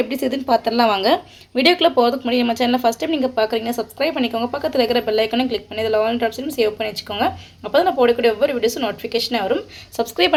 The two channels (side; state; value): both; identical; correlation 1.00